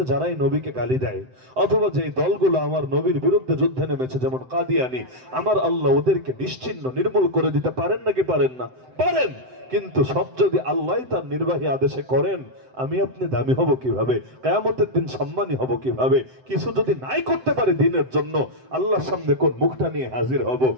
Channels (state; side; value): late; left; 7.8 ms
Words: যারাই নবীকে গালি দেয়, অথবা যে দলগুলো আমার নবীর বিরুদ্ধে যুদ্ধে নেমেছে, যেমন কাদিয়ানি, আমার আল্লাহ ওদেরকে নিশ্চিহ্ন নির্মূল করে দিতে পারেন নাকি পারেন না? পারেন। কিন্তু সব যদি আল্লাহ তার নির্বাহী আদেশে করেন, আমি আপনি দামি হব কিভাবে? কিয়ামতের দিন সম্মানী হব কিভাবে? কিছু যদি নাই করতে পারে দিনের জন্য, আল্লাহর সামনে কোন মুখটা নিয়ে হাজির হব?